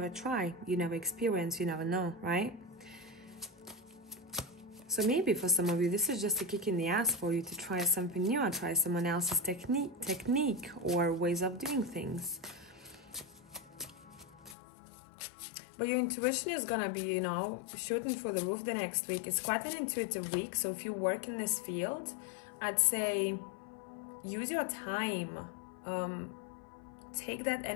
try, you never experience, you never know, right? So maybe for some of you, this is just a kick in the ass for you to try something new, or try someone else's technique or ways of doing things. But your intuition is gonna be, you know, shooting through the roof the next week. It's quite an intuitive week. So if you work in this field, I'd say use your time. Take that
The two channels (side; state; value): right; drops out; at 14.6 s